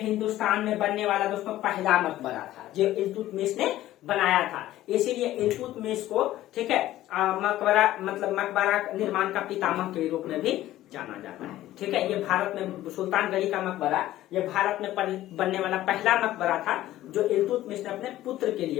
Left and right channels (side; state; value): right; quieter; 14.6 dB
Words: में बनने वाला दोस्तों पहला मकबरा था जो इल्तुतमिश ने बनाया था। इसीलिए इल्तुतमिश को, ठीक है, मकबरा मतलब मकबरा निर्माण का पितामह के रूप में भी जाना जाता है, ठीक है। ये भारत में सुल्तानगढ़ी का मकबरा ये भारत में बनने वाला पहला मकबरा था जो इल्तुतमिश ने अपने पुत्र के